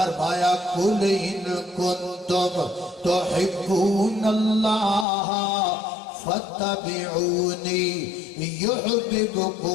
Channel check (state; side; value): drops out; right; at 5.1 s